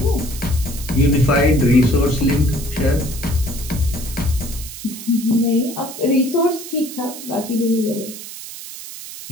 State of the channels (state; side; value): noise; right; hiss, 12 dB below the sound